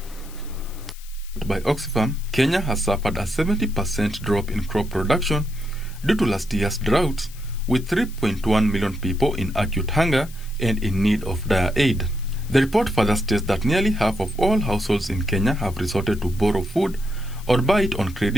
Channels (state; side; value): noise; left; hiss, 20 dB below the sound